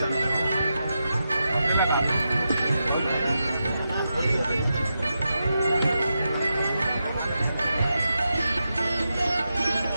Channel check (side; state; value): both; inverted; correlation -0.87